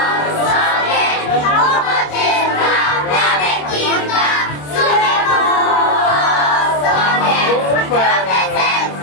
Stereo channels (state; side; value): late; right; 27 ms